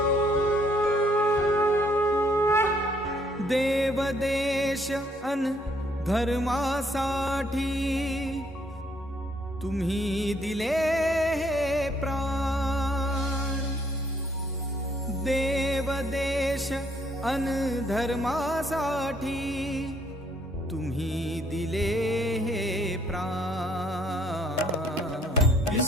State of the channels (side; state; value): both; normal; correlation 0.67